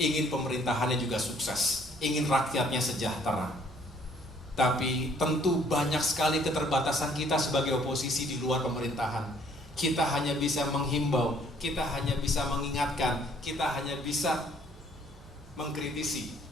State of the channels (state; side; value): normal; both; correlation 0.61